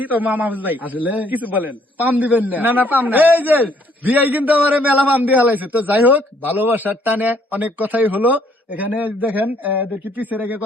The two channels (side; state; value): both; normal; correlation 0.65